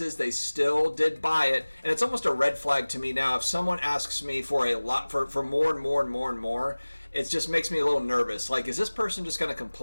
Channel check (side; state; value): both; inverted; correlation -1.00